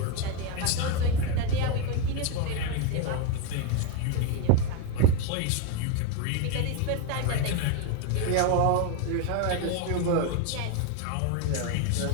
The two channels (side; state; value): both; different; correlation 0.02